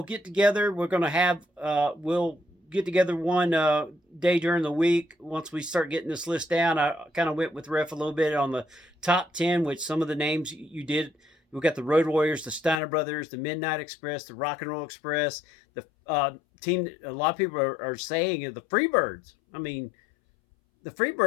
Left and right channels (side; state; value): right; drops out; at 12.8 s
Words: get together. We're going to have we'll get together one day during the week once we start getting this list down. I kind of went with Ref a little bit on the top 10, which some of the names you did. We've got the Road Warriors, the Steiner Brothers, the Midnight Express, the Rock and Roll Express, the team that a lot of people are saying is the Freebirds. I mean, the